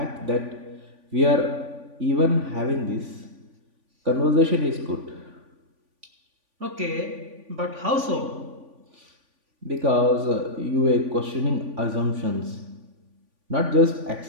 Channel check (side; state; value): left; late; 3.5 ms